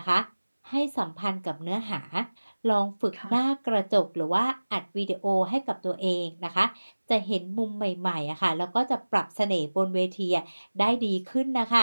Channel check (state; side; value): inverted; both; correlation -1.00